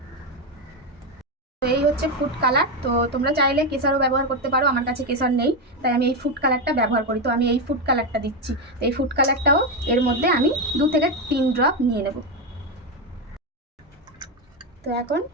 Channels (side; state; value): both; normal; correlation 0.09